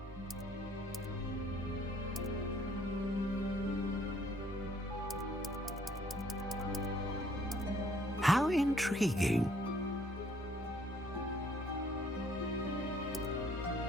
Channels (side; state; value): both; normal; correlation 0.63